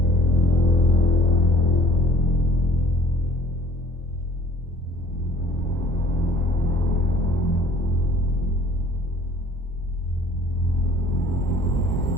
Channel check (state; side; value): normal; both; correlation 0.54